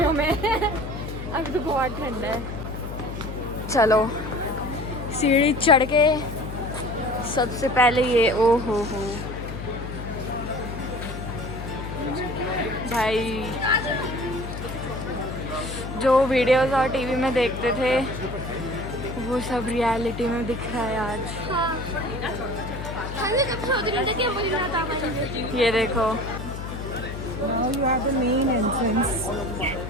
में अभी तो बहुत ठंड है। चलो सीढ़ी चढ़ के सबसे पहले ये, ओ हो भाई, जो वीडियोस और टीवी में देखते थे वो सब रियलिटी में दिख रहा है आज। ये देखो,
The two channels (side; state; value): left; noise; hum, 8 dB below the sound